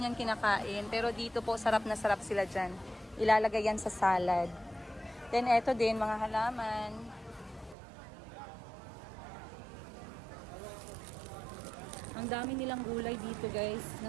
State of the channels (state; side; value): drops out; left; at 7.8 s